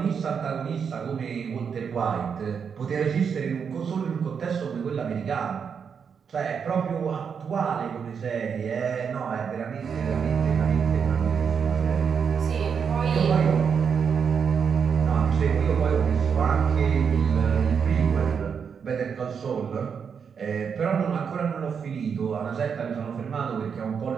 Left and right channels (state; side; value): quieter; left; 6.7 dB